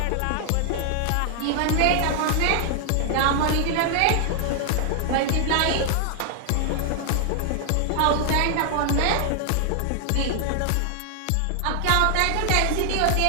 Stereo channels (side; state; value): both; different; correlation 0.00